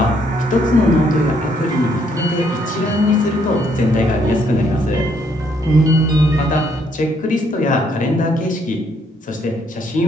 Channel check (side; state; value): both; normal; correlation 0.70